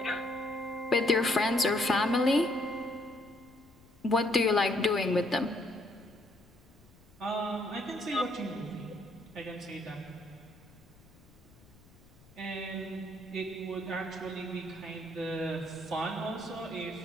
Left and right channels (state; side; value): noise; left; rumble, 26 dB below the sound